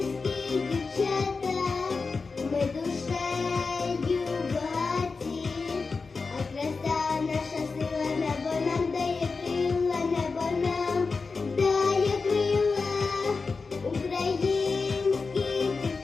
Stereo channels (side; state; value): right; quieter; 4.4 dB